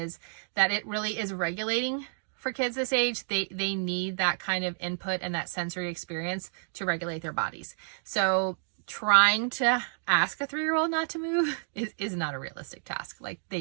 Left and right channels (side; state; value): left; silent; digital silence